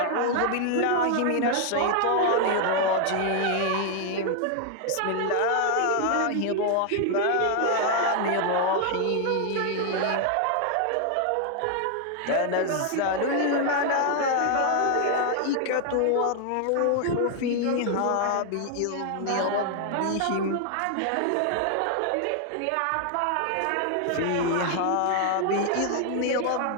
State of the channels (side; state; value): both; different; correlation 0.00